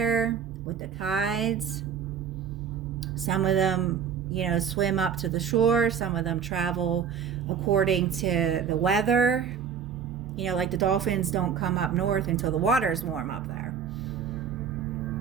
with the tides. Some of them, you know, swim up to the shore. Some of them travel according to the weather. You know, like the dolphins don't come up north until the water's warm up there.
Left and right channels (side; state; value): left; quieter; 7.5 dB